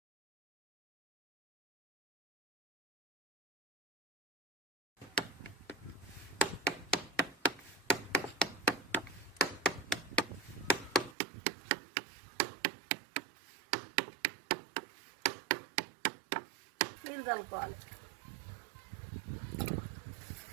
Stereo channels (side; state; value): left; drops out; at 11.2 s